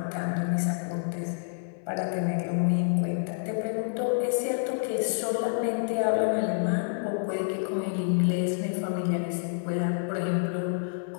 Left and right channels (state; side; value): silent; right; 59 dB below the other